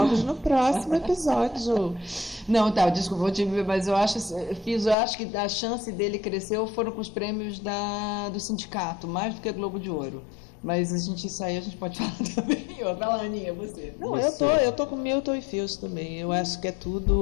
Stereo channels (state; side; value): drops out; right; at 5.0 s